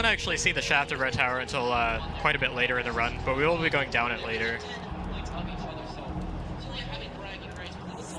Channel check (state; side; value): identical; both; correlation 1.00